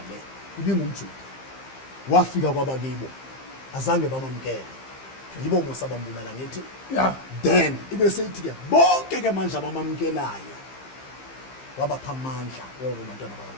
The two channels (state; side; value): late; right; 15 ms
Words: le ibingumJuda. Wafika kwabakibo azange bamamkele. Yibo mosabambulala ngithi. Yeah. Then ibe seyithi ke bonke ke manje abamamkelayo wabapha amandla abantwana